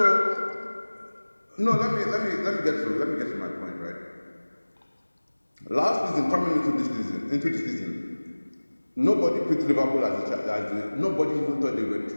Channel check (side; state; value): both; inverted; correlation -1.00